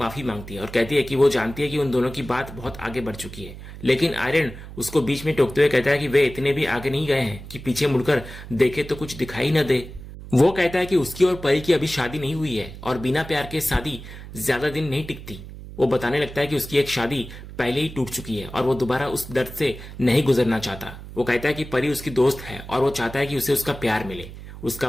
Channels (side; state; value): right; noise; hum, 13 dB below the sound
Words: मांगती है और कहती है कि वो जानती है कि उन दोनों की बात बहुत आगे बढ़ चुकी है, लेकिन आर्यन उसको बीच में टोकते हुए कहता है कि वे इतने भी आगे नहीं गए हैं कि पीछे मुड़कर देखे तो कुछ दिखाई न दे। वो कहता है कि उसकी और परी की अभी शादी नहीं हुई है और बिना प्यार के शादी ज्यादा दिन नहीं टिकती। वो बताने लगता है कि उसकी एक शादी पहले ही टूट चुकी है और वो दोबारा उस दर्द से नहीं गुजरना चाहता। वो कहता है कि परी उसकी दोस्त है और वो चाहता है कि उसे उसका प्यार मिले। उसका